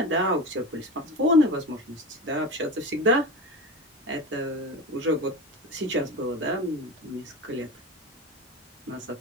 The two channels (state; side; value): normal; both; correlation 0.28